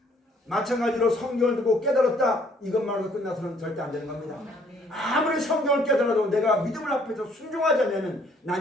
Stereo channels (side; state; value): both; normal; correlation 0.63